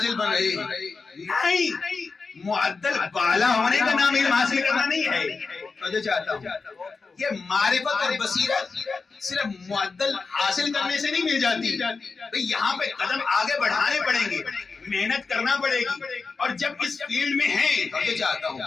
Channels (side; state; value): right; quieter; 4.5 dB